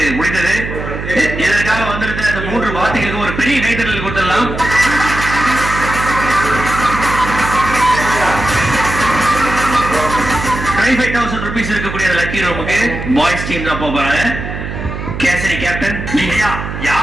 முடிந்தது. இதற்காக வந்திருந்த இந்த 3 வார்த்தைகளுக்கு ஒரு பெரிய கைத்தறல் கொடுத்துடலாம். ₹25,000 இருக்கக்கூடிய லக்கி ரூமுக்கு பாய்ஸ் டீம் தான் போறாங்க. கேசரி கேப்டன் ஐயா,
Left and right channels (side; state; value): right; noise; hum, 7 dB below the sound